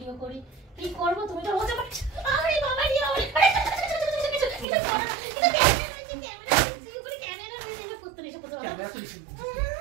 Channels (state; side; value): drops out; left; at 4.7 s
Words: করি। কি করব? তুমি তো বলতে পারছো। আরে বাবা রে বাবা, ক্যামেরা করতে এসে করতে। ক্যামেরা তো